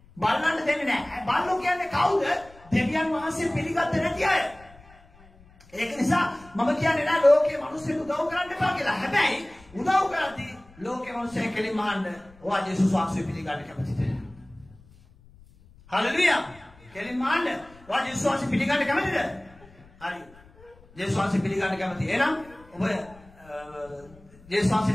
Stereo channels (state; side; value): noise; left; rumble, 25 dB below the sound